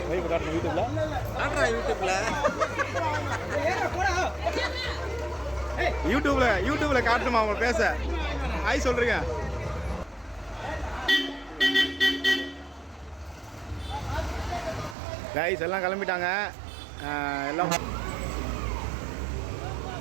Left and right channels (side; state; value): left; drops out; at 15.0 s